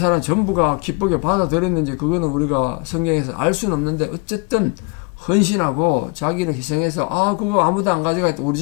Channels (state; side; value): quieter; right; 29.7 dB